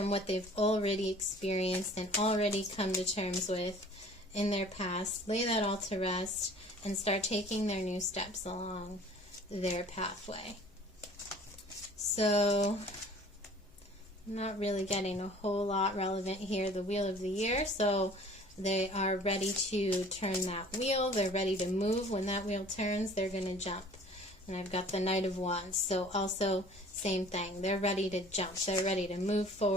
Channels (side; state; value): both; normal; correlation 0.49